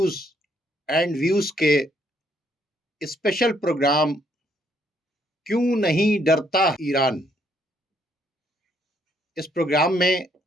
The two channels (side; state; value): both; normal; correlation 0.70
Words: एंड व्यूज़ के स्पेशल प्रोग्राम क्यों नहीं डरता ईरान, इस प्रोग्राम में